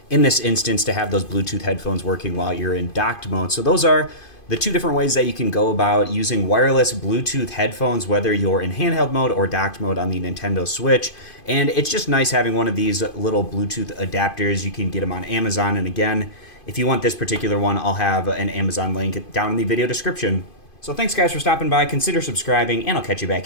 In this instance, to have those Bluetooth headphones working while you're in docked mode. So those are the two different ways that you can go about using wireless Bluetooth headphones, whether you're in handheld mode or docked mode on the Nintendo Switch. And it's just nice having one of these little Bluetooth adapters. You can get them on Amazon. And again, if you want this particular one, I'll have an Amazon link down in the video description. So thanks guys for stopping by, consider subscribing, and I'll catch you back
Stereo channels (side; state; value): right; late; 2.5 ms